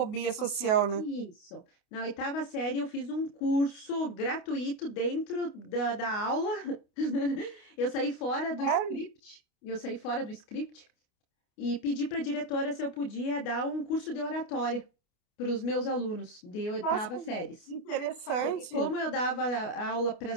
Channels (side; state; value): right; late; 28 ms